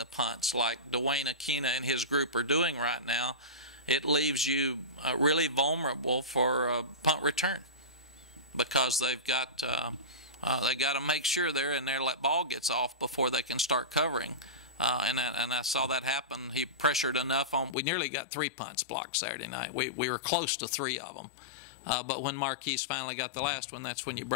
punts like Dwayne Aquina and his group are doing right now, it leaves you really vulnerable for a punt return, because they've got to make sure they're in there, let ball gets off before they can start covering. And I saw that happen. He pressured enough on. We nearly got 3 punts blocked Saturday night. We were close to 3 of them. But when Marquise finally got the last one, that's when you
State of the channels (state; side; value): drops out; right; at 17.8 s